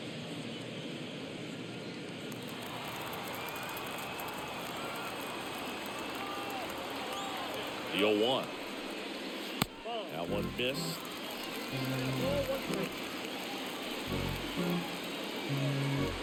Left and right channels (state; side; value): identical; both; correlation 1.00